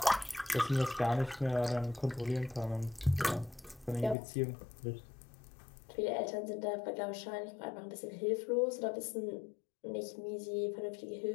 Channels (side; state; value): right; drops out; at 4.2 s